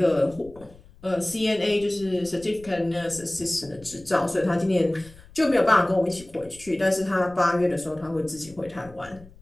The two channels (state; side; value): noise; left; rumble, 23 dB below the sound